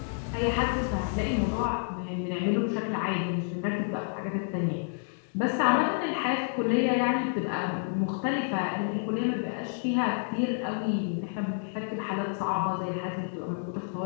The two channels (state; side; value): silent; right; digital silence